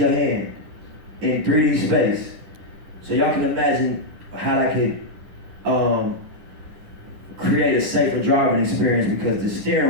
hand in 3D space. So y'all can imagine how that could create a safer driving experience because the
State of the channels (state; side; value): late; left; 9.9 ms